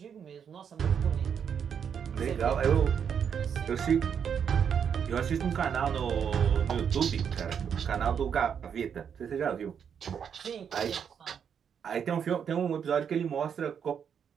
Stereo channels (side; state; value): left; quieter; 7.6 dB